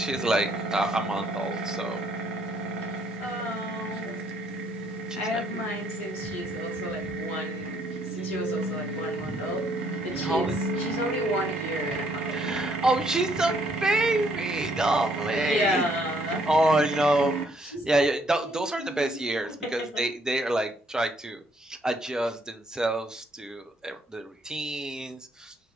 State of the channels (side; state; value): both; normal; correlation 0.67